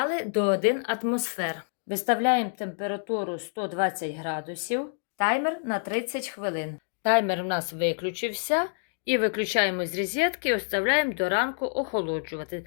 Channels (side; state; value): right; silent; digital silence